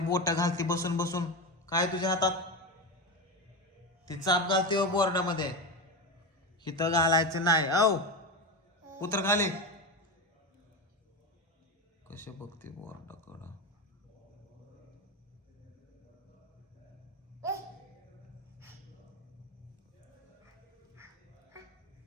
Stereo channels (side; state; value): both; normal; correlation 0.18